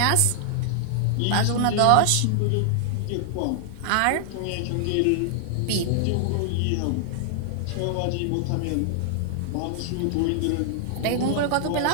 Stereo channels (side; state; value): both; different; correlation -0.01